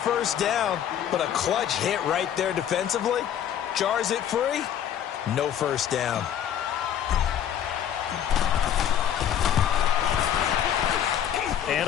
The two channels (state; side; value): quieter; right; 9.8 dB